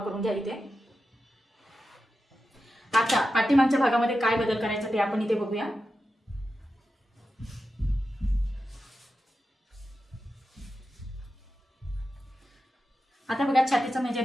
घ्या इथे. आता पाठीमागच्या भागामध्ये काय बदल करायचा ते आपण इथे बघूया. आता बघा, छातीचं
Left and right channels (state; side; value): normal; both; correlation 0.91